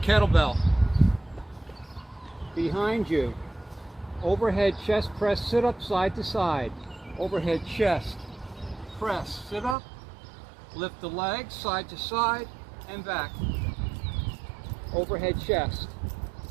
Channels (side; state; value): left; drops out; at 9.8 s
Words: Behind you, overhead chest press, sit up side to side. Overhead chest, press, sit up, lift the legs side to side and back. Overhead chest,